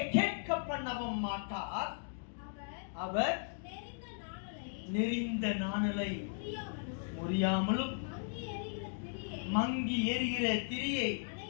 கேட்க பண்ணவும் மாட்டார். அவர் நெறிந்த நாணலை முறியாமலும் மங்கி எரிகிற திரியை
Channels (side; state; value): right; silent; digital silence